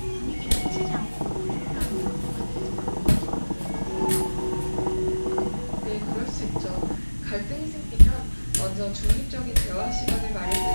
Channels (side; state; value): both; inverted; correlation -1.00